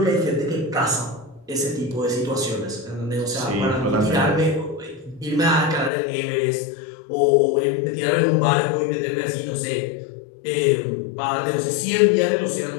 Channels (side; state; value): right; drops out; at 5.9 s